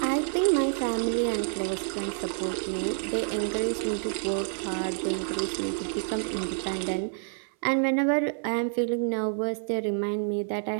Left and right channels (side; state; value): left; silent; 59 dB below the other